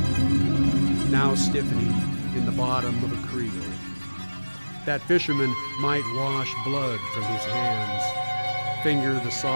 now stiffening in the bottom of a creel. That fisherman might wash blood from his hands, finger the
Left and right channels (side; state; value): both; inverted; correlation -1.00